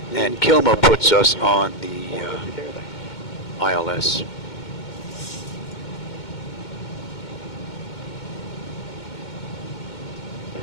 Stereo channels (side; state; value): right; late; 2.2 ms